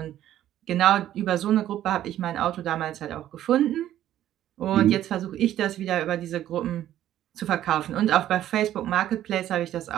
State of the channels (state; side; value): quieter; left; 12.3 dB